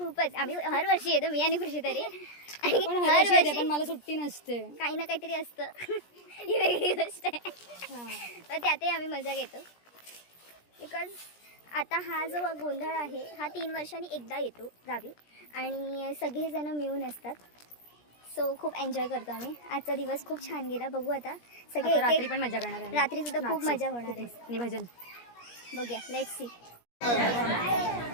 आम्ही हर वर्षी येतो मी आणि खुशी तरी आणि पण हर हर वर्षी पण वर्षी मला सुट्टी नसते. काही ना काहीतरी असतं. ही वेगळी गोष्ट आहे तर त्यातही आम्ही मजा घेतो बिकॉज आता हा जो गोंधळ आहे हा 3 वर्षांनी एकदा येतो गावी आणि सगळेजण मिळून असतात. सो खूप एन्जॉय करतो आम्ही. आजचा दिवस खूप छान गेला. बघू आता सगळे आता रात्री एक-एक- पण मजा करणार आहे. रात्री सुद्धा खूप नाचू. मजा होणार आहे. आणि भजन. बघूया लेट्स सी.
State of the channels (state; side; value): late; right; 17 ms